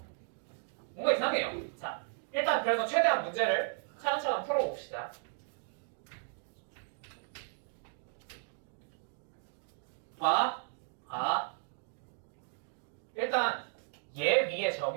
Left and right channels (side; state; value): left; silent; digital silence